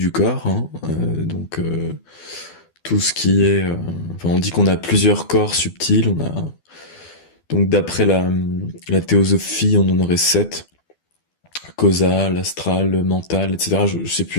corps, hein. Tout ce qui est, enfin, on dit qu'on a plusieurs corps subtils. On a donc d'après la théosophie, on en aurait sept: causal, astral, mental, etc. Je sais plus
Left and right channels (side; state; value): right; late; 12 ms